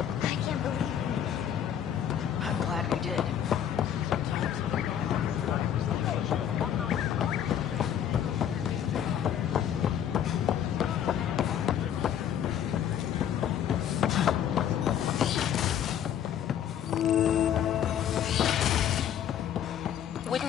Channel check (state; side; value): quieter; right; 9.6 dB